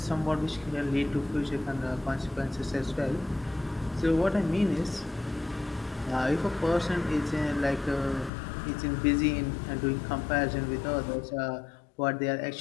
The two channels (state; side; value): drops out; right; at 8.3 s